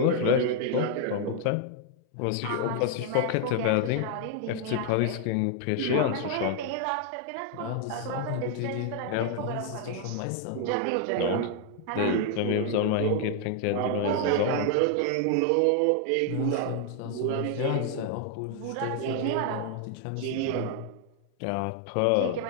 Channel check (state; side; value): different; both; correlation 0.00